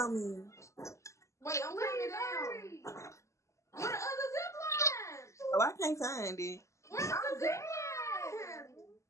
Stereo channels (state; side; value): late; right; 0.14 ms